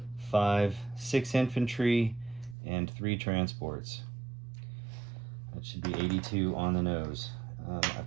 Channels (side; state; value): left; drops out; at 2.6 s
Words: 5, 6 infantry, and 3 transports. That should be 82 on the nose. I've